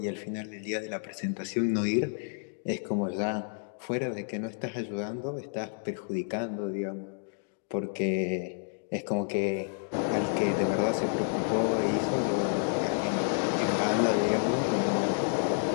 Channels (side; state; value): right; silent; digital silence